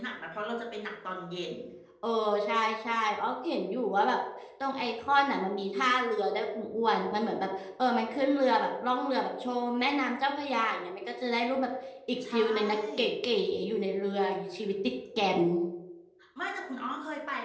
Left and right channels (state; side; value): identical; both; correlation 1.00